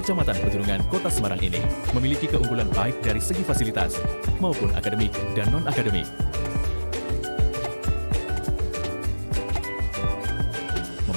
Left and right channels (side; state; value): both; inverted; correlation -1.00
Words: Petunungan, Kota Semarang ini memiliki keunggulan baik dari segi fasilitas maupun akademik dan non-akademik.